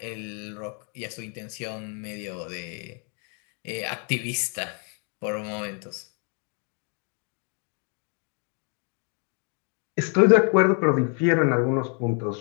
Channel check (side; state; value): right; quieter; 38.8 dB